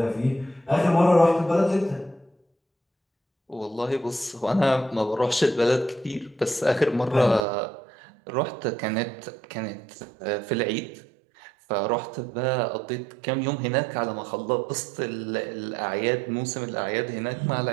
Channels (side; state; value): left; drops out; at 7.5 s